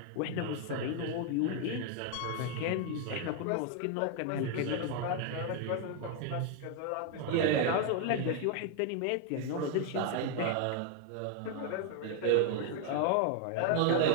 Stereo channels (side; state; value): both; different; correlation 0.01